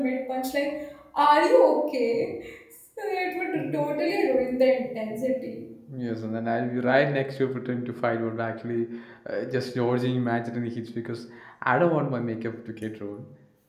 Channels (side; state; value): both; identical; correlation 1.00